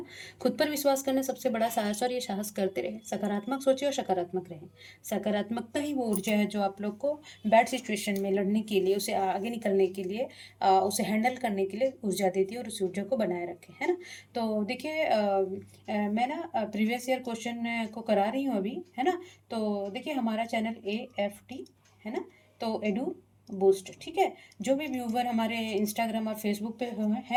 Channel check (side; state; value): both; identical; correlation 1.00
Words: खुद पर विश्वास करना सबसे बड़ा साहस, और ये साहस करते रहे। सकारात्मक सोचिए और सकारात्मक रहें। सकारात्मकता ही वो ऊर्जा है जो आप लोग को बैड सिचुएशन में लड़ने के लिए, उसे आगे निकलने के लिए, उसे हैंडल करने के लिए ऊर्जा देती है और उस ऊर्जा को बनाए रखे, है ना। तो देखिए मैं ना प्रीवियस ईयर क्वेश्चन को करा रही हूँ अभी, है ना। तो देखिए हमारा चैनल AFT है ना, तो एडू बूस्ट, ठीक है। जो भी व्यूवर हमारे इंस्टाग्राम और फेसबुक पे